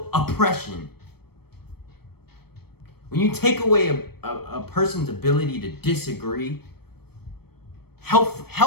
oppression. When you take away a person's ability to disagree,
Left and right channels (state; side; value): late; right; 0.96 ms